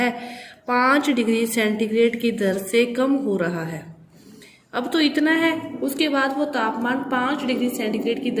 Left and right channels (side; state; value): both; identical; correlation 1.00